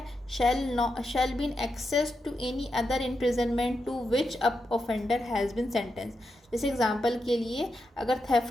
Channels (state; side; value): normal; both; correlation 0.86